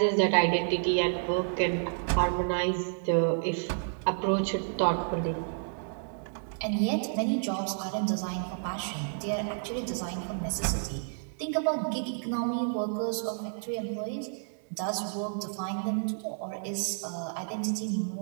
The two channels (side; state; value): left; silent; digital silence